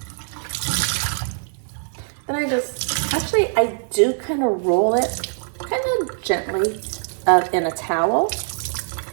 then I do kind of roll it kind of gently in a towel.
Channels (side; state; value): left; silent; 64 dB below the other